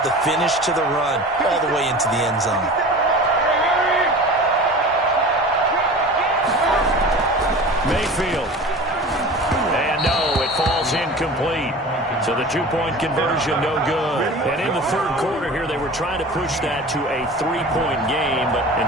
the finish to the run all the way into the end zone? Mayfield. And no, it falls incomplete. So the 2-point conversion, no good. And in the 3rd quarter here, they were trying to push that to a 3-point game, but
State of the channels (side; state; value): both; normal; correlation 0.37